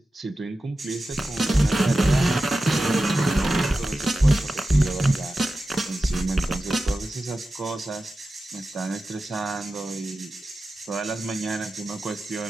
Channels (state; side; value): normal; both; correlation 0.93